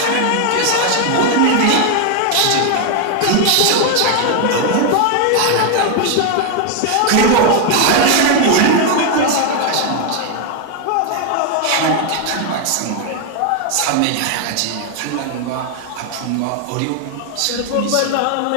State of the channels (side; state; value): both; different; correlation 0.01